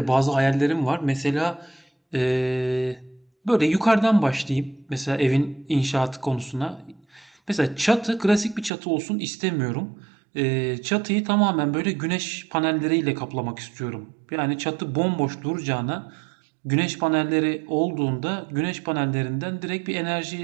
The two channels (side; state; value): left; drops out; at 8.7 s